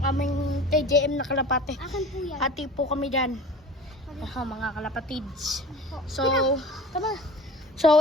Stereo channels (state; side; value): normal; both; correlation 0.40